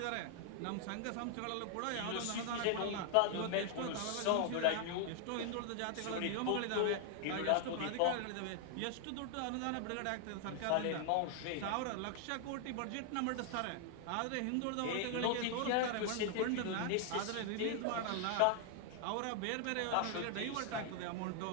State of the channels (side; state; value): both; different; correlation 0.00